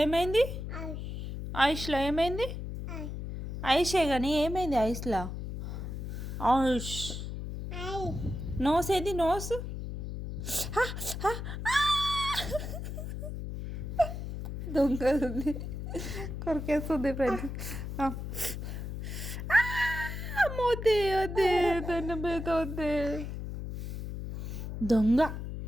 ఏమైంది? ఐస్లో ఏమైంది? ఐసే కానీ ఏమైంది ఐస్లో? ఐష్ నోస్ ఏది? నోస్ దొంగది కొరికేస్తుంది ఫ్రెండ్స్. మోతే వద్దే, తన మీద వద్దే. దొంగ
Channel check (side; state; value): left; noise; hum, 6 dB below the sound